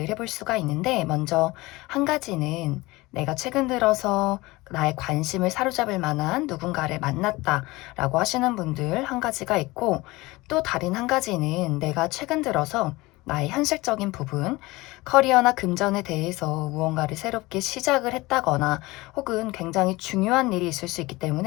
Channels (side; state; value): right; quieter; 21.2 dB